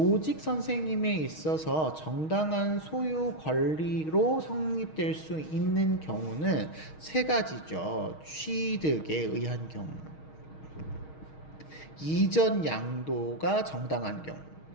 선생님에 있어서 정당한 소유 권리로 성립될 수 있는 경우는 세 가지죠. 취득에 의한 경우, 이전 양도가 정당한 경우,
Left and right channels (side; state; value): right; late; 6.4 ms